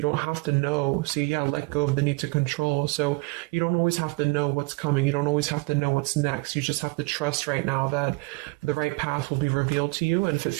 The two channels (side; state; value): left; quieter; 26.6 dB